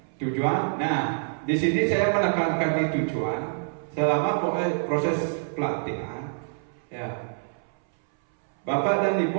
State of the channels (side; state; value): left; silent; 61 dB below the other